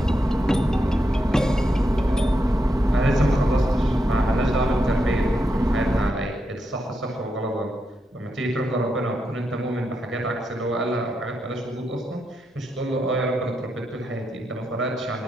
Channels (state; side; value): normal; both; correlation 0.84